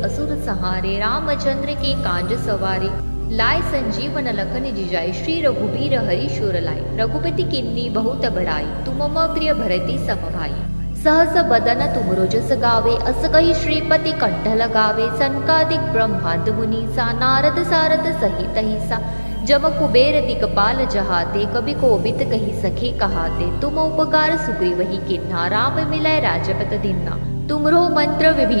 असुर संहारे, रामचंद्र के कांज सवारे, लाय संजीवन लखन जिजाय, श्री रघुबीर हरि शूर लाय, रघुपति किन्नी बहुत बड़ाई, तुम मम प्रिय भरति सम भाई। सहस बदन तुमरो जस गावे, अस कहि श्रीपति कंठ लगावे, सनकादिक ब्रह्मांड मुनीसा, नारद सारद सहित अहिसा, जम कुबेर दिगपाल जहाते, कवि कोबिद कहि सखे कहाते, तुम उपकार सुग्रीवहि किन्हा, राम मिलय राजपत दीन्हा। तुमरो मंत्र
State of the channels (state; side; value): inverted; both; correlation -1.00